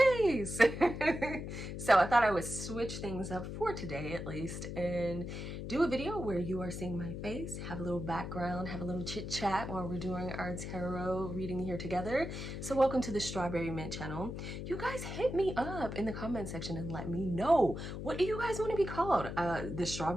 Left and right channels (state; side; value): noise; left; hum, 6 dB below the sound